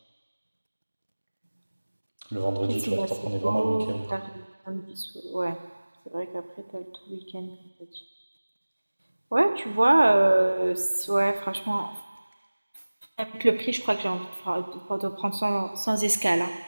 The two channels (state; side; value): inverted; both; correlation -1.00